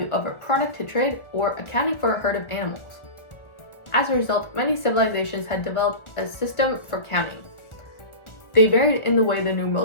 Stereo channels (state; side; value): late; right; 1.4 ms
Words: of a product to trade or accounting for a herd of animals. As a result, many civilizations had developed a system for counting. They varied in the way the